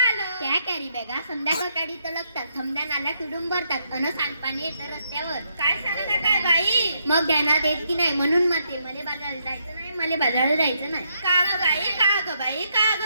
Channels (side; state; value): both; inverted; correlation -0.76